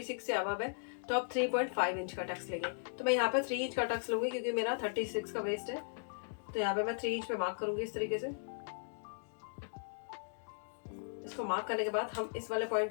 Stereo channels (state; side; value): silent; right; digital silence